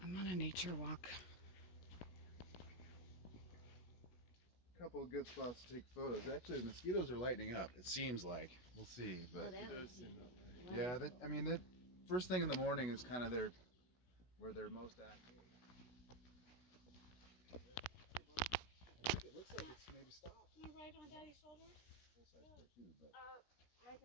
I'm on a nature walk. A couple of good spots to take photos. Actually, the mosquitoes are lightening up. It seems like. We'll see. But It does seem that way. yeah, I mean, that first thing in the morning is kind of where they're most active. I think it looks like it's maybe stopped. Right on Daddy's shoulder? Full size pair too, but.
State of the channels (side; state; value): right; late; 16 ms